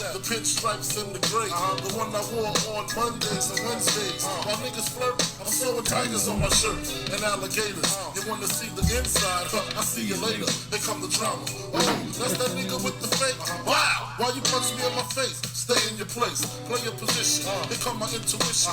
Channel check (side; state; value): both; identical; correlation 1.00